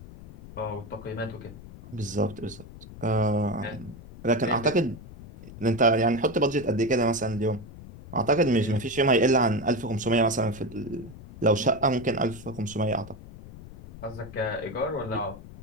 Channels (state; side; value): noise; left; rumble, 16 dB below the sound